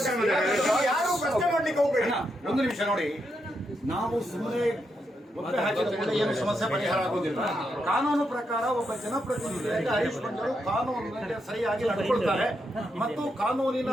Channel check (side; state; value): both; normal; correlation 0.82